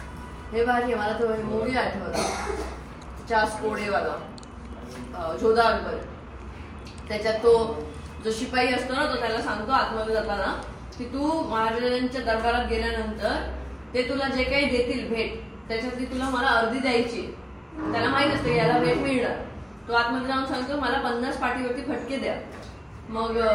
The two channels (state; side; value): identical; both; correlation 1.00